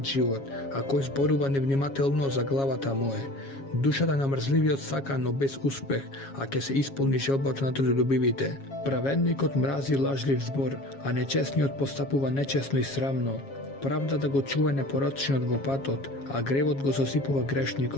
живот, а кој зборува невнимателно за главата му е. Душата на мрзливиот сака, но без успех, а ќе се исполни желбата на трудолюбивите. Праведникот мрази лажлив збор, а нечесниот постапува нечесно и срамно. Правдата го чува непорочниот во патот, а гревот го сосипува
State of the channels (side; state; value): right; late; 7.3 ms